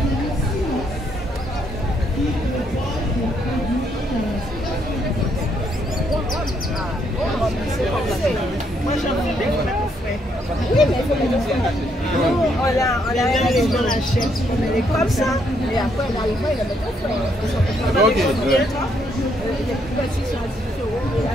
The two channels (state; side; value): normal; both; correlation 0.73